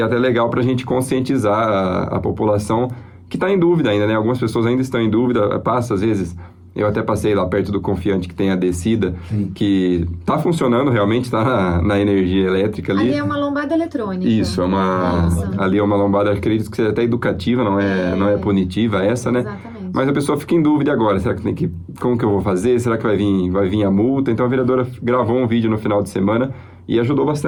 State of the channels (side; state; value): both; identical; correlation 1.00